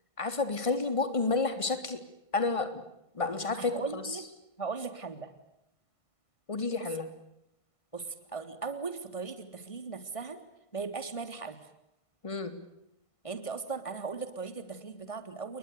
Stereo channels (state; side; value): late; right; 1.5 ms